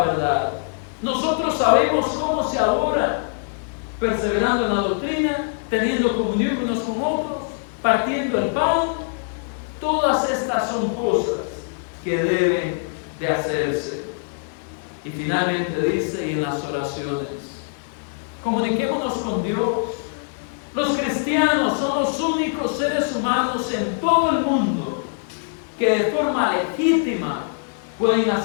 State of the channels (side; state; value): right; silent; digital silence